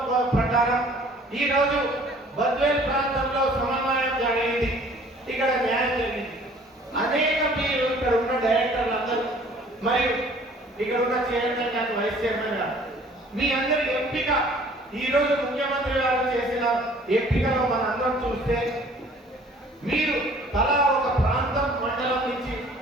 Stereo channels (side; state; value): both; normal; correlation 0.53